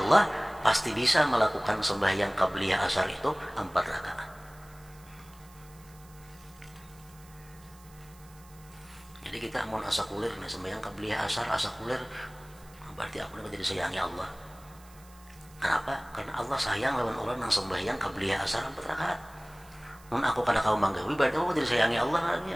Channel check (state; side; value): noise; right; hiss, 25 dB below the sound